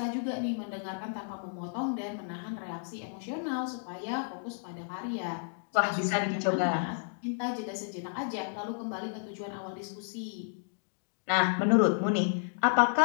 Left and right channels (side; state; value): right; silent; digital silence